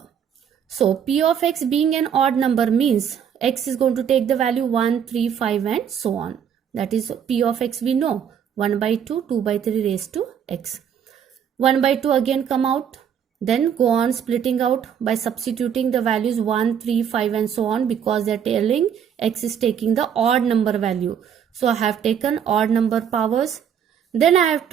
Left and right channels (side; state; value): left; quieter; 8.3 dB